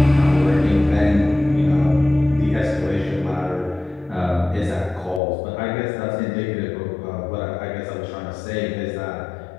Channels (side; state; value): right; drops out; at 5.2 s